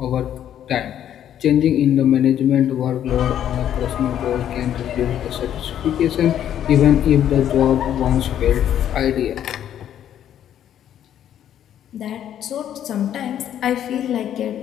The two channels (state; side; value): quieter; right; 10.5 dB